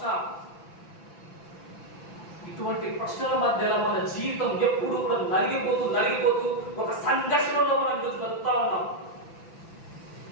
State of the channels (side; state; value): right; late; 6.0 ms